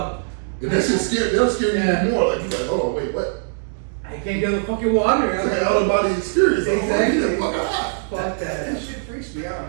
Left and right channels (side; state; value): left; silent; digital silence